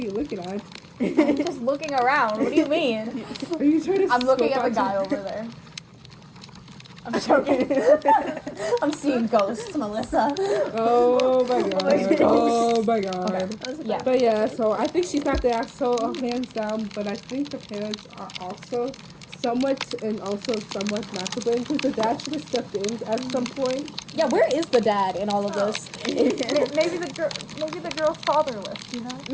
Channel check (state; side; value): identical; both; correlation 1.00